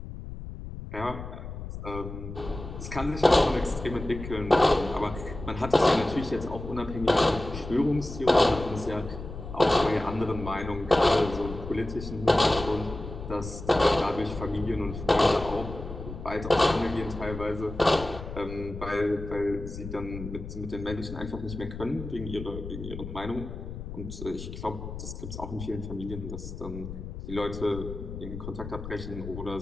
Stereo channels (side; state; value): left; noise; rumble, 10 dB below the sound